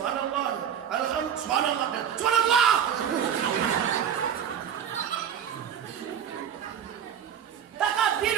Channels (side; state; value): left; quieter; 8.6 dB